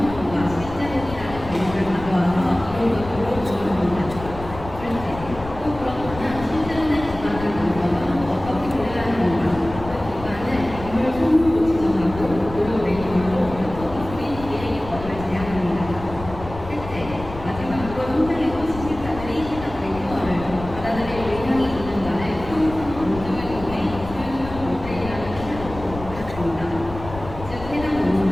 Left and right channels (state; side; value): noise; left; rumble, 12 dB below the sound